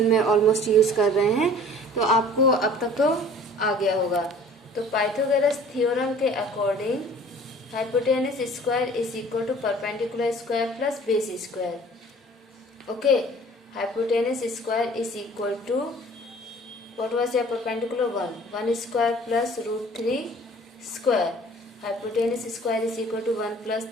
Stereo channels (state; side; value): normal; both; correlation 0.49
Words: में ऑलमोस्ट यूज़ कर रहे हैं. तो आपको अब तक तो आ गया होगा. तो पाइथागोरस थ्योरम के according hypotenuse square is equal to perpendicular square plus base square. Okay, hypotenuse square is equal to, what was your perpendicular? 1 square plus root 3 square. Hypotenuse square is equal to 1 plus